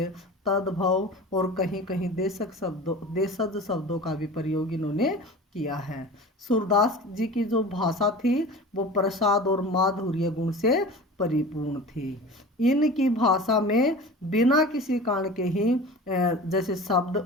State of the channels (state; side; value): normal; both; correlation 0.37